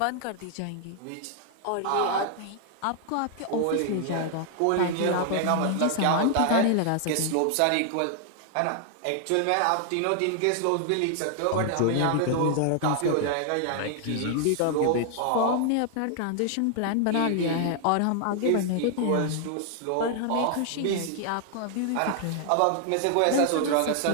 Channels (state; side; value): different; both; correlation 0.00